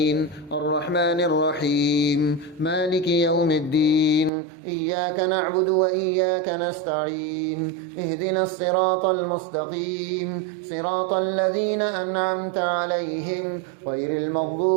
الرحمن الرحيم مالك يوم الدين إياك نعبد وإياك نستعين اهدنا الصراط المستقيم صراط الذين أنعمت عليهم غير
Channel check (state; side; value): drops out; left; at 4.3 s